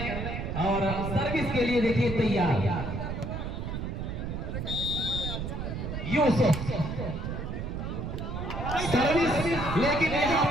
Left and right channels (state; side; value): noise; right; rumble, 4 dB below the sound